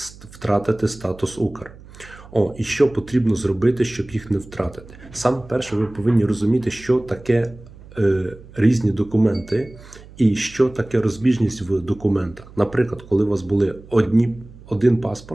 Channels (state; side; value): noise; right; hum, 20 dB below the sound